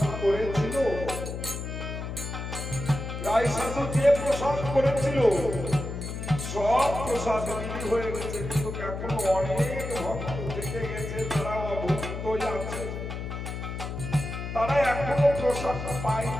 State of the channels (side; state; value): left; noise; hum, 6 dB below the sound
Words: করেছিল, রায়সাধু যে প্রসাদ করেছিল সব প্রসাদ বিলি হয়ে গেছে, কিন্তু এখনো অনেক ভক্ত থেকে গেছে, তারা অভুক্তই আছে, তারা এখনো প্রসাদ পায়